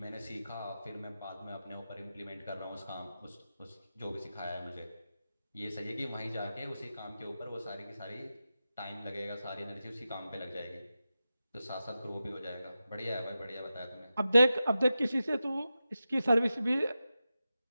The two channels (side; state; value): both; inverted; correlation -0.92